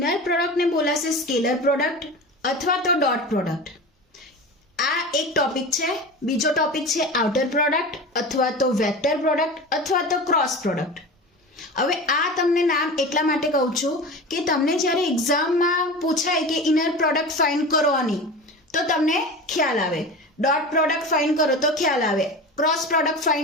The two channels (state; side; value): normal; both; correlation 0.31